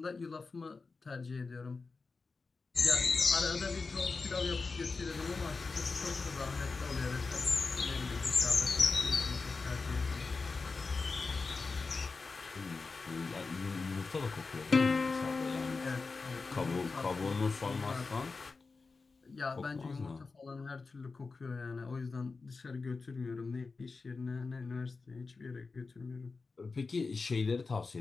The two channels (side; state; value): right; quieter; 4.2 dB